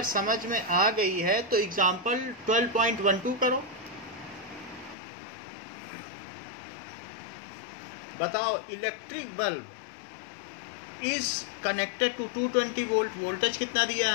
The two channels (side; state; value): right; drops out; at 5.0 s